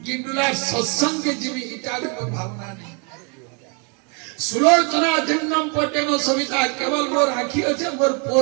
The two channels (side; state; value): left; quieter; 35.4 dB